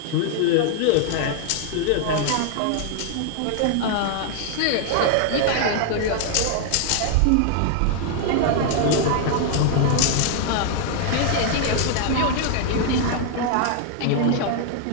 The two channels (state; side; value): different; both; correlation 0.00